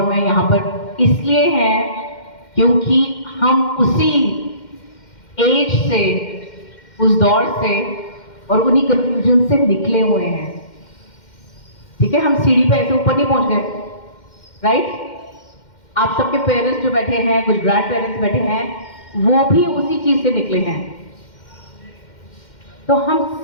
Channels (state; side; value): late; right; 2.1 ms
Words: मैं यहाँ पर इसलिए हैं क्योंकि हम उसी एज से, उस दौर से और उन्हीं कंफ्यूजन से निकले हुए हैं। ठीक है, हम सीढ़ी पे ऐसे ऊपर नहीं पहुंच गए, राइट? आप सबके पेरेंट्स जो बैठे हैं, कुछ ग्रैंड पेरेंट्स बैठे हैं, वो भी उसी चीज से निकले हैं। तो हम